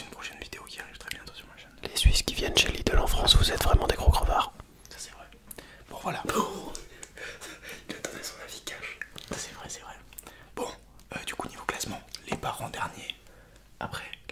prochaine vidéo qui arrive très bientôt sur ma chaîne. Les Suisses qui viennent chez Lidl en France, vous êtes vraiment des gros crevards. Ça, c'est vrai. Bon, voilà. Il a donné son avis cash. C'est vrai, c'est vrai. Bon, du coup, niveau classement, les parents derniers. Après,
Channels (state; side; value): identical; both; correlation 1.00